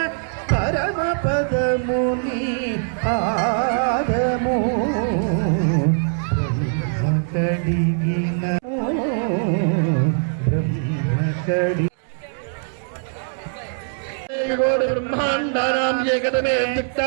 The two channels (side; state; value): left; silent; 64 dB below the other